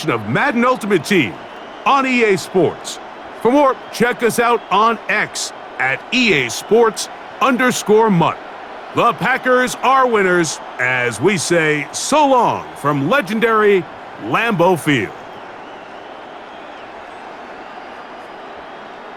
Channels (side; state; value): both; identical; correlation 1.00